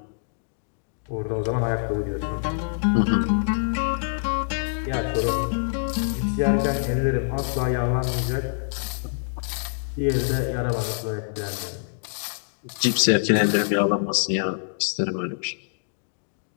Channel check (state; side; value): silent; right; digital silence